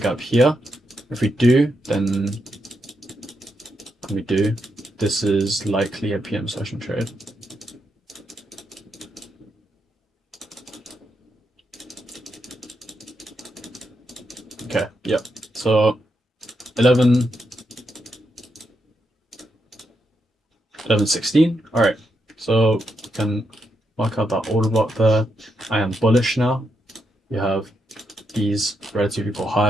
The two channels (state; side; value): normal; both; correlation 0.82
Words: gap here. If we do, then this is likely a PM session trade. Okay, yep. So 11:16. All right. So you can mark out that order block there. I am bullish now. You have these relative equal